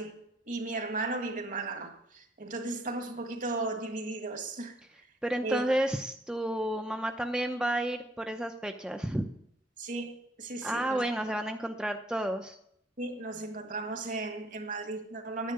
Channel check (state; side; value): normal; both; correlation 0.63